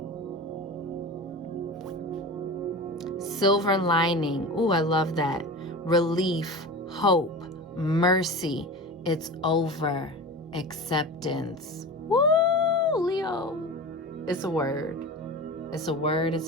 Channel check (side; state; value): both; normal; correlation 0.30